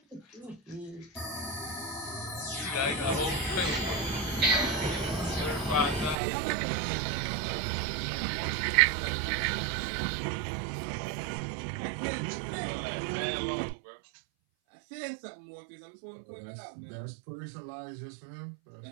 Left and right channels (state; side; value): drops out; left; at 6.2 s